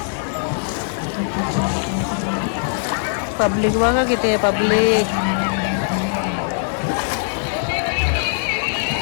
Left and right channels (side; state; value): right; silent; digital silence